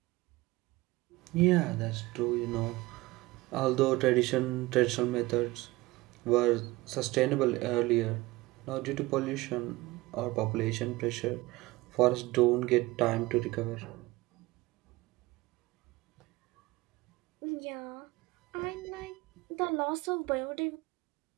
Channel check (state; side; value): quieter; left; 20.5 dB